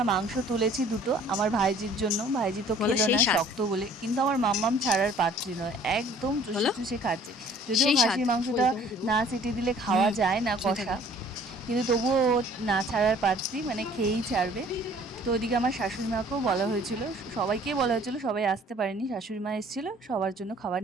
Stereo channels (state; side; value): normal; both; correlation 0.53